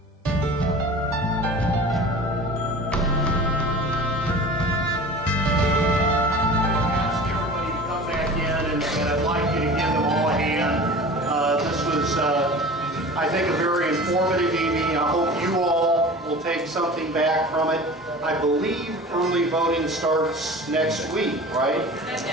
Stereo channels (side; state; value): both; normal; correlation 0.38